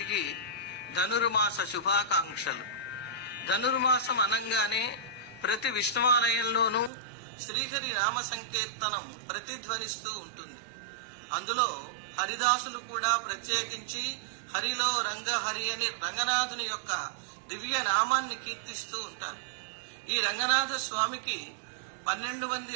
ధనుర్మాస శుభాకాంక్షలు. ధనుర్మాసం అనంగానే ప్రతి విష్ణువాలయంలోనూ శ్రీహరి నామ సంకీర్తనం ప్రతిధ్వనిస్తూ ఉంటుంది. అందులో హరిదాసులు కూడా ప్రత్యేకించి హరిలో రంగహరి అని రంగనాథుని యొక్క దివ్య నామాన్ని కీర్తిస్తూ ఉంటారు. ఈ రంగనాథ స్వామికి 12 మంది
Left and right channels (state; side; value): drops out; left; at 6.9 s